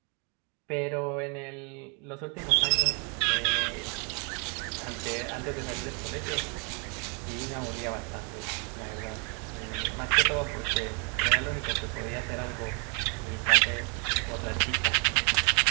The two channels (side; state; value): left; quieter; 36.4 dB